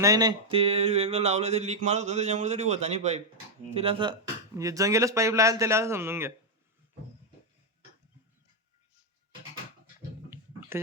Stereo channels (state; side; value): normal; both; correlation 0.00